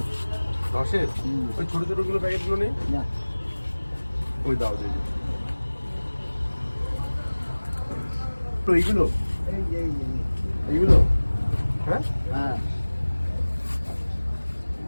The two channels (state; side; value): inverted; both; correlation -1.00